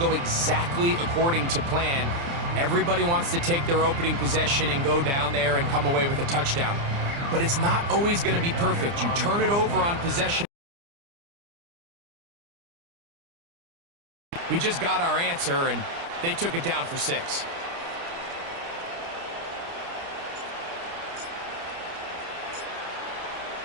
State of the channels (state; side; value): late; left; 29 ms